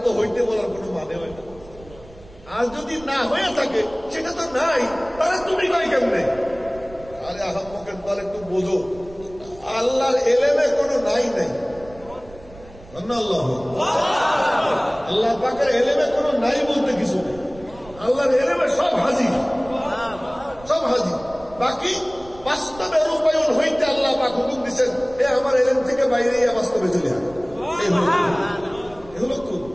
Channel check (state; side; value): noise; right; rumble, 20 dB below the sound